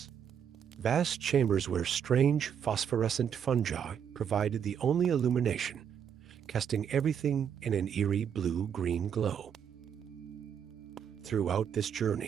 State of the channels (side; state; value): left; quieter; 8.2 dB